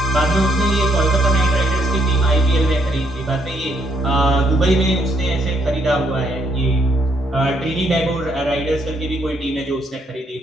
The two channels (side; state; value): both; normal; correlation 0.72